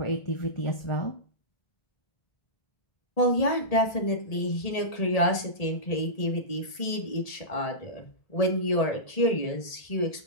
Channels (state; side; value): late; right; 1.8 ms